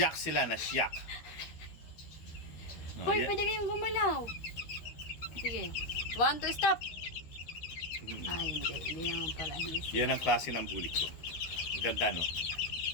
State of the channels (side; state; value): right; late; 13 ms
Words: sila, nasyak. Hoy, pwede kayong gumalaw. Sige. 1, 2, stop. Ay, hindi. Hindi naman pala. Yan ang klase ng bulik ko. Ganda, no?